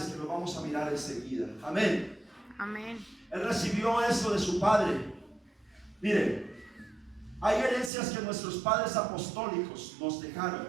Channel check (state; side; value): drops out; left; at 7.9 s